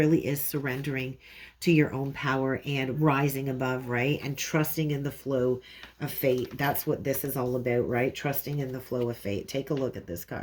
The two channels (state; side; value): identical; both; correlation 1.00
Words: is surrendering to your own power and rising above, right? And trusting in the flow of fate. That's what this is all about, right? Trusting in the flow of fate. Take a look at this